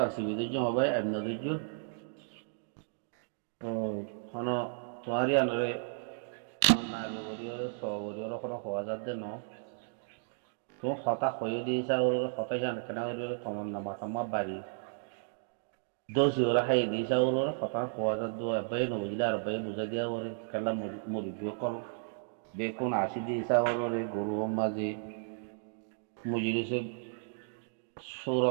আসিবি দুজন হবে এমন দুজন। তো হন তোমারি আনরে নাগে গরিয়রে স গরিয়রে কোনো হওয়া যাচ্ছে ন। তো হতা হয়ে দিয়েছে ওর হতা জান কেন গরিয়রে তোমার নামা তোমার বাড়ি দোষী ওরা খাই দিয়েছে ওর হতা হওয়া যাচ্ছে এবাই নবুঝলে আর এবাই বুঝাই দিয়া ওরে খেলা মুরগিও কল বেকুন আসি দিয়েছে ওরে গরু মাঝে মুজিরিছে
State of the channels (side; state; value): left; silent; digital silence